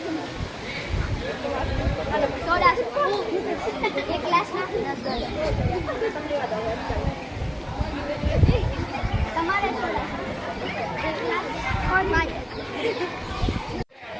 સોડા એક ગ્લાસના 10 તમારે સોડા એક ગ્લાસ કોણ માંગે?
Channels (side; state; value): both; identical; correlation 1.00